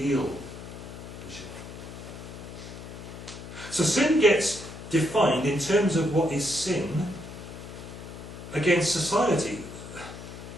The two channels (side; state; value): left; noise; hum, 12 dB below the sound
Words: we should. So sin gets defined in terms of what is sin against society.